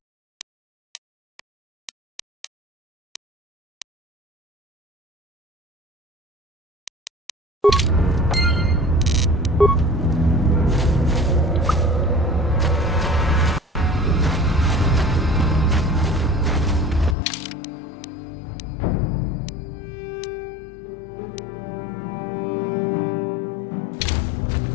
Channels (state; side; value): drops out; right; at 17.2 s